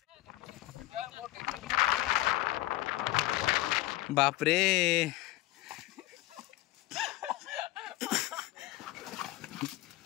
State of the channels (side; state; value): right; quieter; 17.7 dB